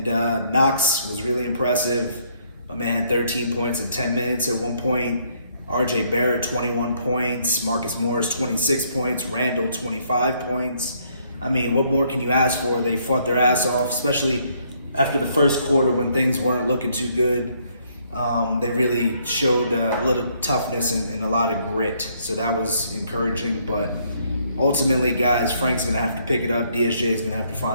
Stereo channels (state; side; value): inverted; both; correlation -0.69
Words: Knox was really impressive. My man had 13 points in 10 minutes at one point. RJ Barrett, 21 points. Marcus Morris, 26 points. Randle, 25 points. I mean, what more can you ask for? They fought their ass off, especially after the first quarter when things weren't looking too good. They really showed a little toughness and a lot of grit, so that was encouraging. But ultimately, guys, Frank's going to have to pick it up. DSJ is going to have